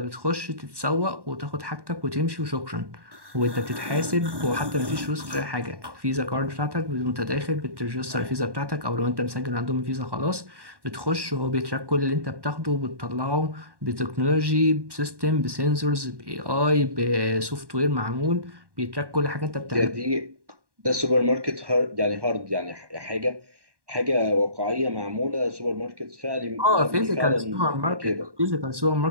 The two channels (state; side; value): late; left; 1.1 ms